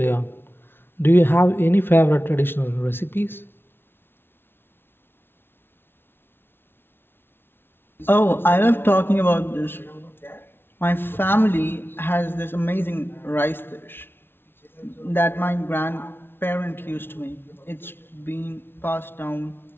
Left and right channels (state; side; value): late; right; 0.11 ms